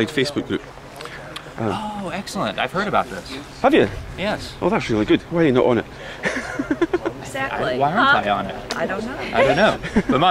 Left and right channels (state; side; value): identical; both; correlation 1.00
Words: Facebook group. Oh, excellent. I've heard about this. Have you? Yes. Oh, that's really good. Why are you not on it? Exactly. Why aren't I on it? I don't know. I don't know. But